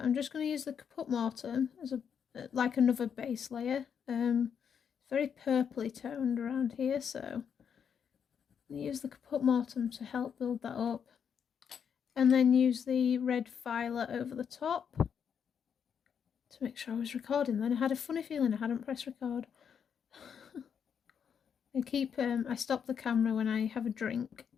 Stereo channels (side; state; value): right; quieter; 7.5 dB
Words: just going to use the Caput Mortuum as a like another base layer. It's very purpley toned around here, so I'm going to use the Caput Mortuum to help build that up, and then use the red violet over the top to make sure I was recording. Then I had a funny feeling I hadn't pressed record. I stop the camera when I have a drink,